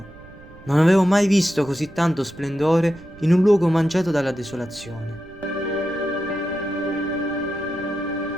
Non avevo mai visto così tanto splendore in un luogo mangiato dalla desolazione.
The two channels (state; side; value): noise; right; rumble, 21 dB below the sound